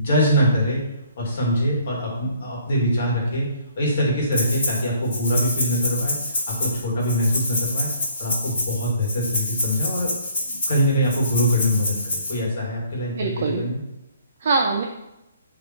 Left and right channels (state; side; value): inverted; both; correlation -0.59